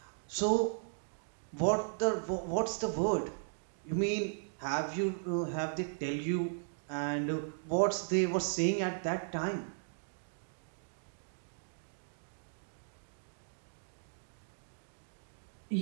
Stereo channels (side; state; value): left; silent; digital silence